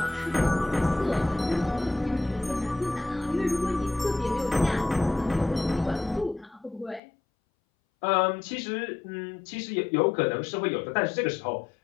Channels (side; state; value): right; drops out; at 7.0 s